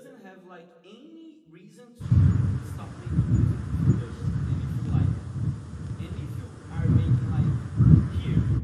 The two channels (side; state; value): both; identical; correlation 1.00